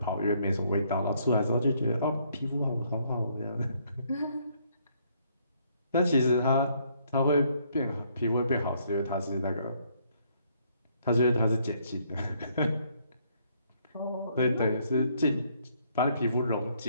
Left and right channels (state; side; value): inverted; both; correlation -0.68